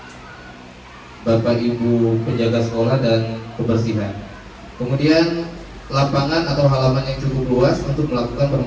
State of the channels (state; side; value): identical; both; correlation 1.00